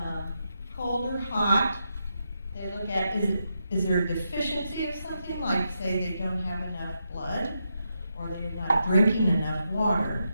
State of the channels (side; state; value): both; inverted; correlation -0.84